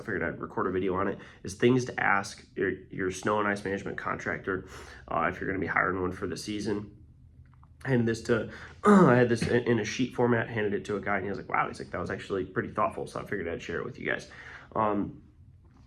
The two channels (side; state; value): both; identical; correlation 1.00